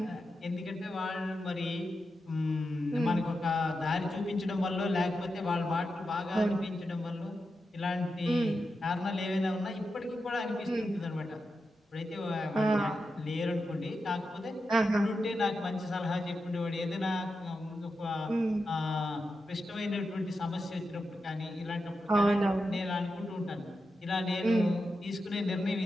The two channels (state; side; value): normal; both; correlation 0.89